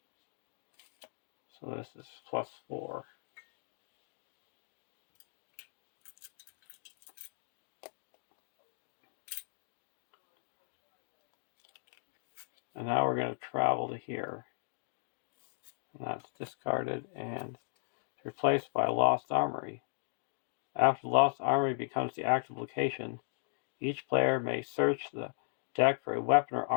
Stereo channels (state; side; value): silent; right; digital silence